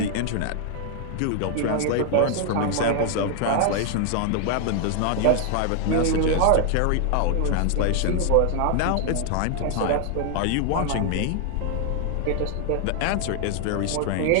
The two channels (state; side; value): different; both; correlation 0.00